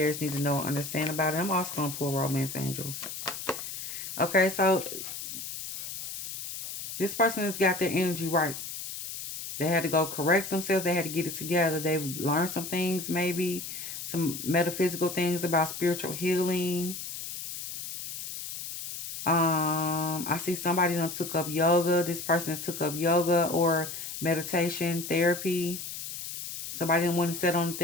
need to know and understand about it. I'm also going to pull romance angels. Okay, so this person has got their energy right. They had to go correct themselves. They had to get it together. They've learned some things, maybe some metaphysical things about spiritual healing. I see somebody done took up yoga. This person has took up yoga or meditation therapy. Somebody done went and sat on the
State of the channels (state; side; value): noise; left; hiss, 8 dB below the sound